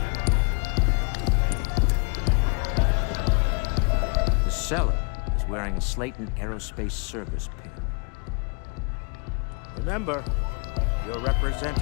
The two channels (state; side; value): quieter; right; 35.5 dB